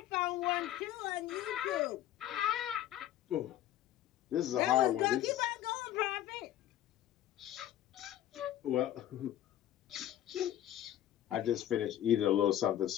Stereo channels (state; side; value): quieter; right; 12.3 dB